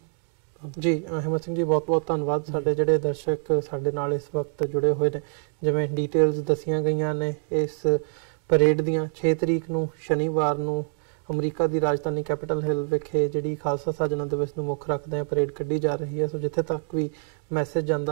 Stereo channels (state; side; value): silent; left; 55 dB below the other